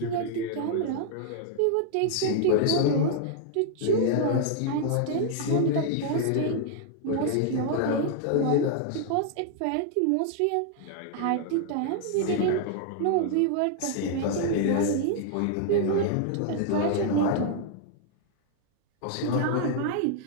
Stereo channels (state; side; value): different; both; correlation 0.00